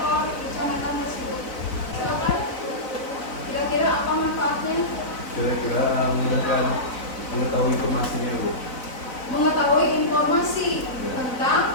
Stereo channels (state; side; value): late; right; 4.0 ms